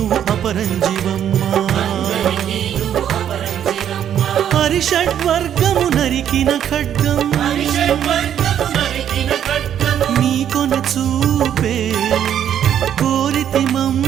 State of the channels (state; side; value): quieter; left; 9.8 dB